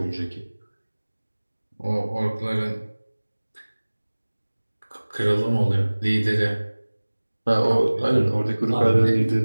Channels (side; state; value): both; inverted; correlation -1.00